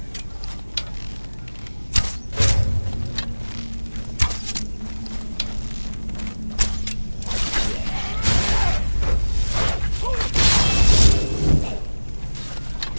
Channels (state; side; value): inverted; both; correlation -1.00